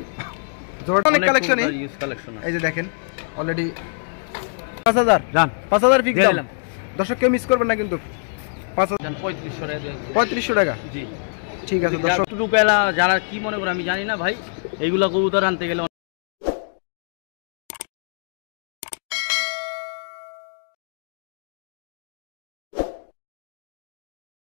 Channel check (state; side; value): silent; right; digital silence